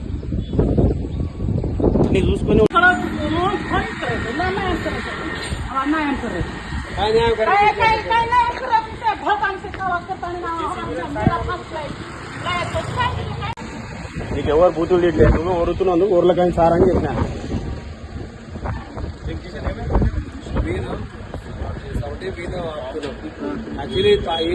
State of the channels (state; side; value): identical; both; correlation 1.00